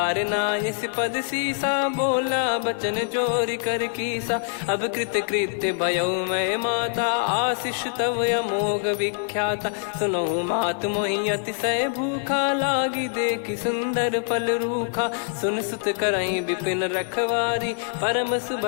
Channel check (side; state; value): right; silent; digital silence